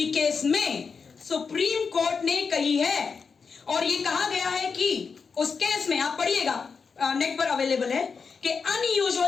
केस में सुप्रीम कोर्ट ने कही है और ये कहा गया है कि उस केस में, आप पढ़िएगा, नेट पर अवेलेबल है, कि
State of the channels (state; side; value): quieter; right; 5.4 dB